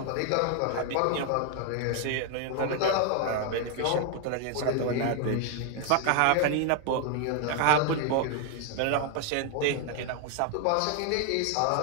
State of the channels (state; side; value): different; both; correlation 0.00